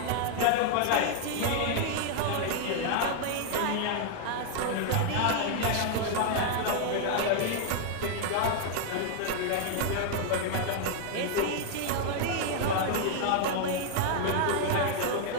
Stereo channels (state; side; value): different; both; correlation 0.00